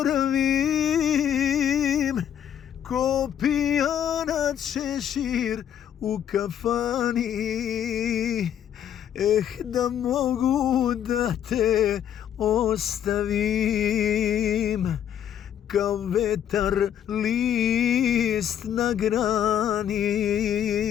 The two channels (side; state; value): right; quieter; 9.8 dB